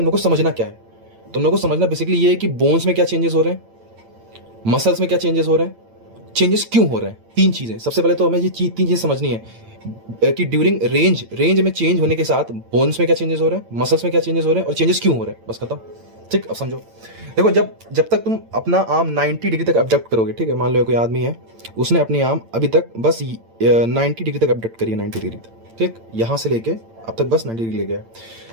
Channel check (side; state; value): left; late; 8.9 ms